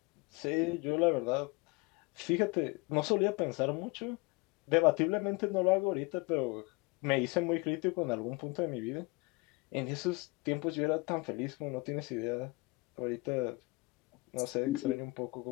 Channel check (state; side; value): quieter; right; 25.6 dB